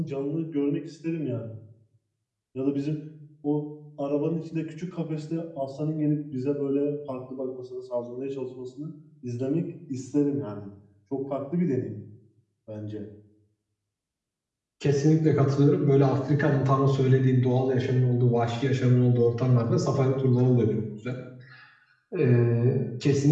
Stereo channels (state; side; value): identical; both; correlation 1.00